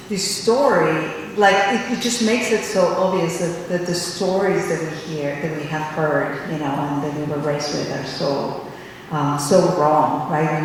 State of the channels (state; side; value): identical; both; correlation 1.00